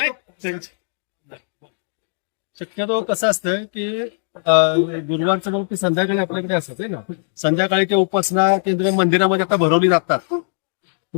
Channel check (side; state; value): right; silent; digital silence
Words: शक्यतो कसं असतं की गुरुवारचं मग ते संध्याकाळी आपल्याकडे असतं ना. संध्याकाळी ते उपासना केंद्र मंदिरामध्ये आता भरवली जातात